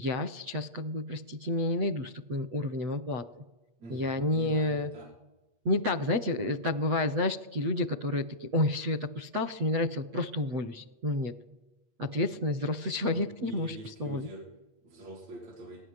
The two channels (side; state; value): left; late; 8.5 ms